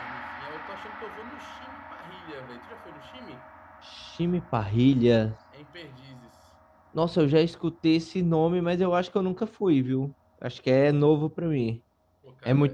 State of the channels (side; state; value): both; identical; correlation 1.00